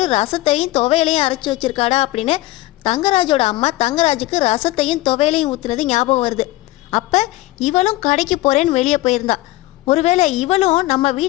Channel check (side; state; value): right; quieter; 18.1 dB